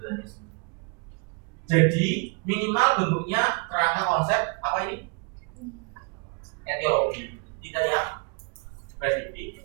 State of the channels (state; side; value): quieter; left; 33.8 dB